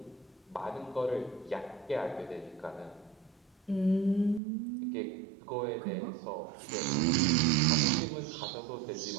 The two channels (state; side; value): drops out; left; at 4.4 s